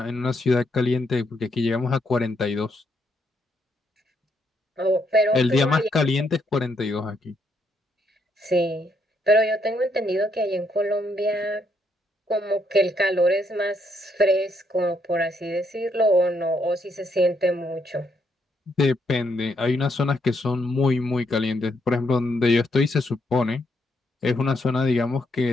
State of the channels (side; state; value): both; normal; correlation 0.75